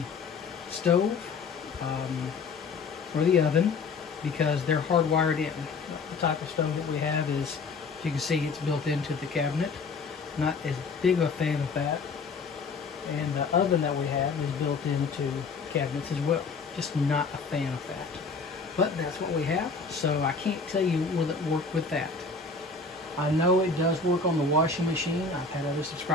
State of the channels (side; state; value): right; quieter; 4.4 dB